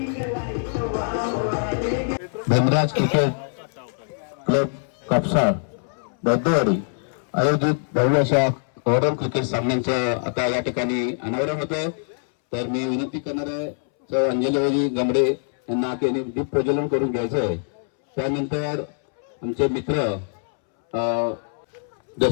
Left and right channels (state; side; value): silent; right; 63 dB below the other